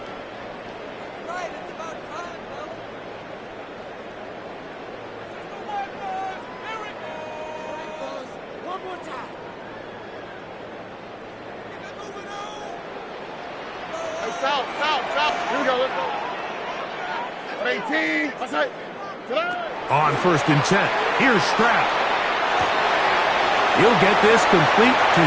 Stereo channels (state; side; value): identical; both; correlation 1.00